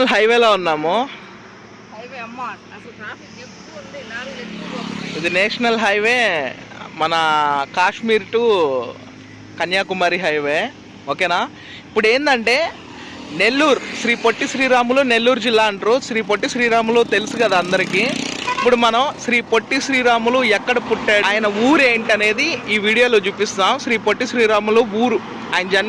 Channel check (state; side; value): identical; both; correlation 1.00